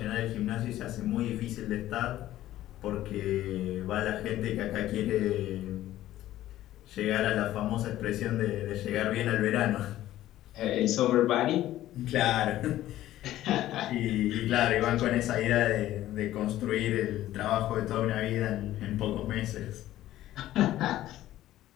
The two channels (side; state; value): right; quieter; 14.1 dB